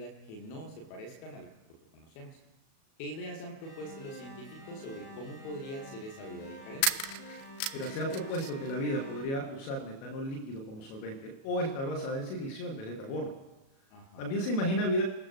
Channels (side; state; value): right; late; 37 ms